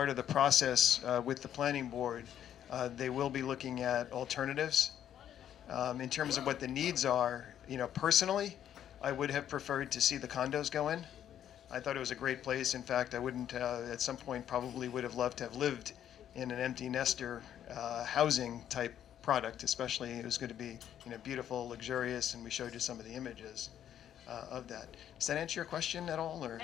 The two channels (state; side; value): quieter; right; 10.3 dB